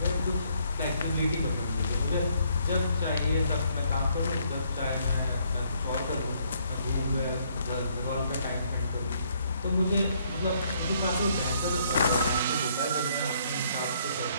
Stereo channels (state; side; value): inverted; both; correlation -0.68